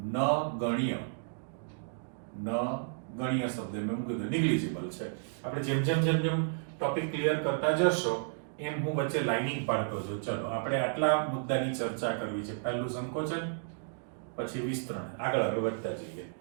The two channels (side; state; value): left; silent; digital silence